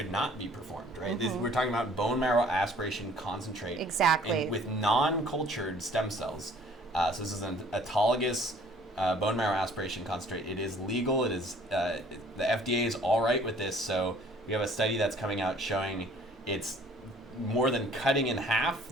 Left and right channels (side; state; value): both; normal; correlation 0.55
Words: not be performed, right? We're talking about bone marrow aspiration concentrate. Exactly. With non-cultured stem cells. So this is an autologous bone marrow aspiration concentrate. It is legal. It is the FDA is all right with this. So we have a study that's coming out showing it's more than cutting in